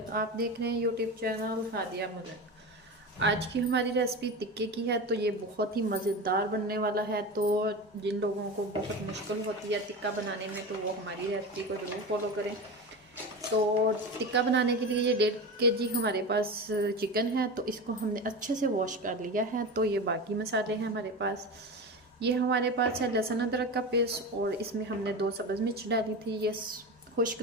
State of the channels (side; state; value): both; normal; correlation 0.25